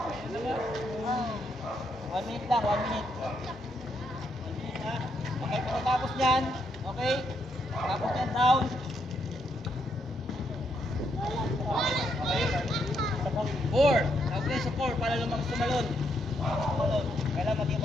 1 minute lang, 1 minute. 1 minute ha. Okay, pagkatapos niyan, okay? Tapos niyan, down. Okay? 4. Tawag din sa 4 para sumalon. Kailangan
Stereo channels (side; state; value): both; normal; correlation 0.77